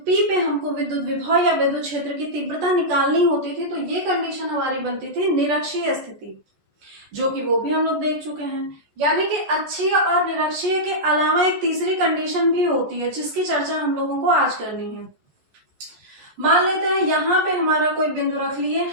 P पे हमको विद्युत विभव या विद्युत क्षेत्र की तीव्रता निकालनी होती थी तो ये कंडीशन हमारी बनती थी निरक्षीय स्थिति, जो कि वो भी हम लोग देख चुके हैं। यानी कि अक्षीय और निरक्षीय के अलावा एक तीसरी कंडीशन भी होती है जिसकी चर्चा हम लोगों को आज करनी है। मान लेते हैं यहाँ पे हमारा कोई बिंदु रख लिए,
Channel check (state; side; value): late; left; 14 ms